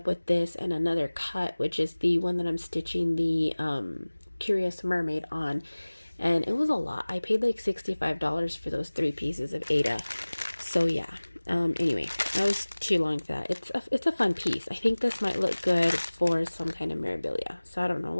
with this and another cut, which is the one that I'm stitching the Curious Mermaid on. And it was a lot. I paid like $65 for those 3 pieces of Ada. So yeah. Anyway, that was too long for that. It's a fun piece. I think this might look good for some kind of memorabilia. So I don't know.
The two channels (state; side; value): inverted; both; correlation -1.00